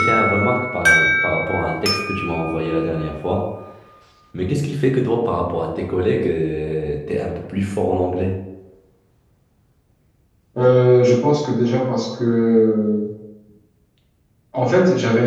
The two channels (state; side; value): identical; both; correlation 1.00